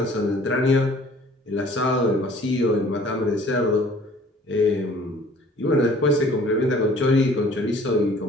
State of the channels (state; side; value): normal; both; correlation 0.53